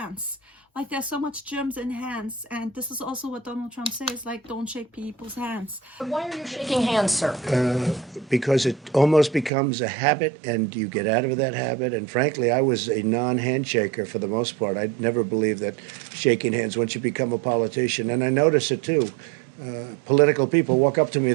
Like, there's so much germs in hands, and this is also what Donald Trump says, like, don't shake people's hands. Why are you shaking hands, sir? Because it almost becomes a habit, and you get out of that habit. And frankly, I was a non-handshaker for the most part. I never believed that shaking hands once you become a politician. And I notice it too. Political people walk up to me,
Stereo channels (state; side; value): drops out; left; at 9.5 s